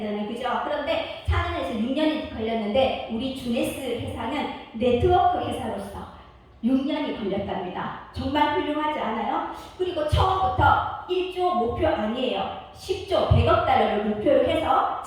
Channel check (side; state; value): both; identical; correlation 1.00